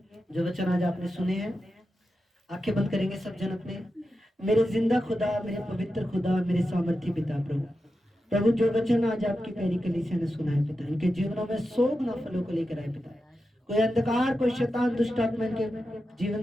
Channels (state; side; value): normal; both; correlation 0.90